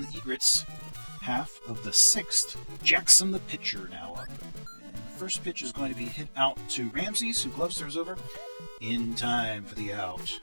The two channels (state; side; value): inverted; both; correlation -1.00